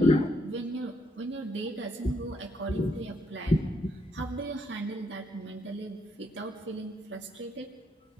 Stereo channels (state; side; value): normal; both; correlation 0.73